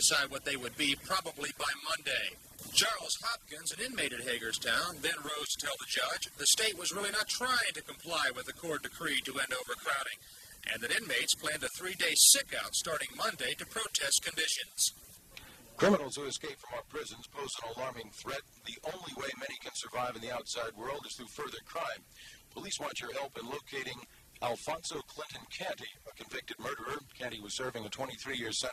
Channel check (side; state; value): both; identical; correlation 1.00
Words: what they would be probably by Monday. Charles Hopkins, an inmate at Hagerstown, then rose to tell the judge the state was really not trying to comply with the court decree to end overcrowding, and that inmates planned a 3-day sick-out starting Monday to protest conditions. Criminals who escape from our prisons pose an alarming threat. The only way many can survive in the outside world is through further crime. Police want your help in locating Alfonso Clinton Canty, a convicted murderer. Canty was serving a 23-year